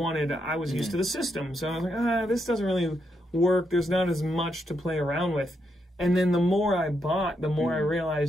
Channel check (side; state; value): both; normal; correlation 0.80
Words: I was used to the system, so I was like, this doesn't really work. There's not as much to play around with. And then the more I bought, the more I